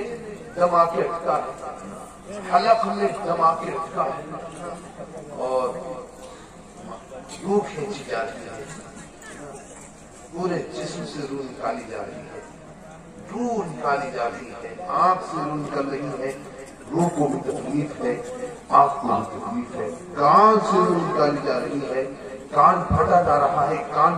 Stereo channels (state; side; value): identical; both; correlation 1.00